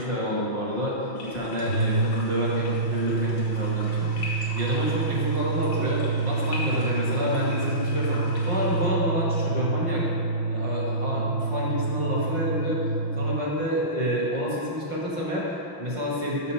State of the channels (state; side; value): late; right; 5.6 ms